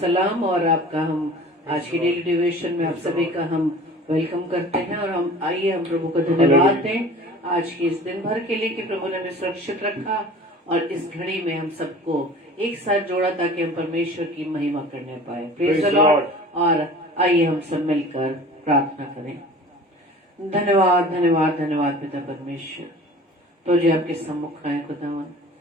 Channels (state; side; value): normal; both; correlation 0.43